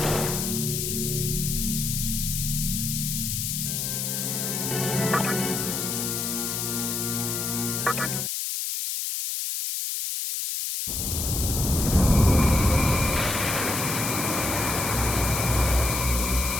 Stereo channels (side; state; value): left; noise; hiss, 2 dB below the sound